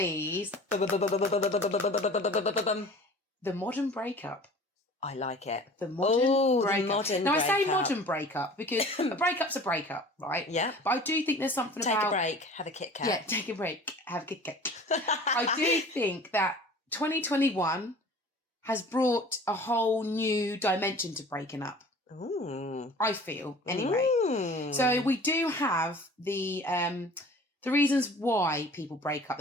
the modern breakup. I like it. The modern Oh, the breakup. modern Now, I say breakup. modern breakup because a breakup's a breakup, right? Yeah. But I do think there's something Take about... a break, have a Kit Kat. Yeah, take a break, have a Kit Kat. I do think that 2021 has brought a whole new dimension to breaking up. Ooh. I feel, anyway. Mm. So we do have the reasons why people break up.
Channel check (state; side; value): normal; both; correlation 0.44